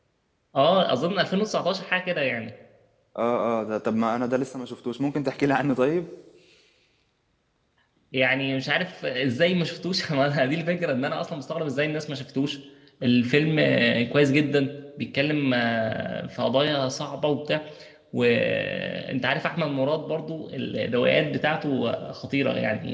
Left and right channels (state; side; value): identical; both; correlation 1.00